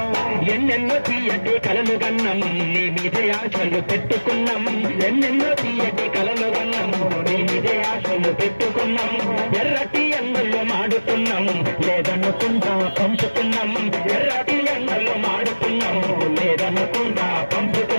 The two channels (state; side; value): inverted; both; correlation -1.00